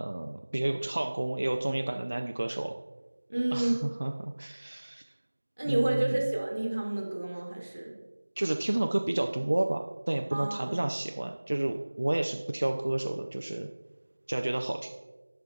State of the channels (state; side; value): inverted; both; correlation -1.00